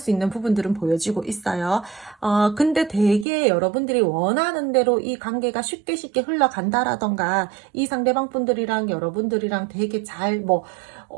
있는 부분들은 보여지고 있어요. 근데 되게 여러분들이 원하는 대로 이 관계가 쉽게 흘러간다라던가 이 상대방 분들이랑 여러분들이랑 되게 잘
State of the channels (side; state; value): left; drops out; at 3.2 s